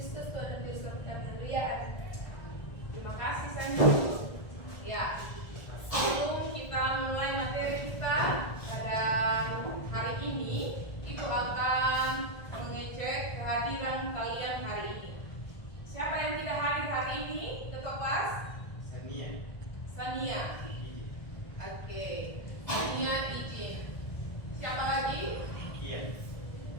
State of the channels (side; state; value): right; late; 1.5 ms